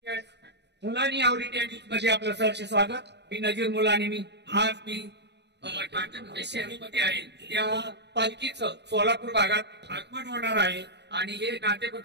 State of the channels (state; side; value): late; left; 0.50 ms